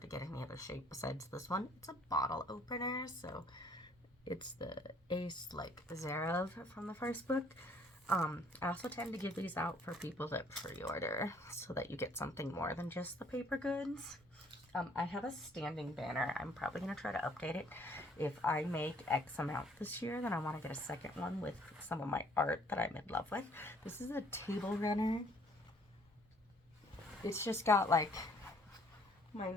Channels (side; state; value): both; normal; correlation 0.61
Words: to get any other shape besides this one. It's a bottle opener, so it's the Ace like Zarov from the first book. I also tend to give these out for people that pre-order so that you get something more than just the paper goods. I have a standing banner. I'm probably going to try to update it. If I make X amount this year, then I want to get a second one with some of my art that I'm in love with. This is a table runner. It's just got like my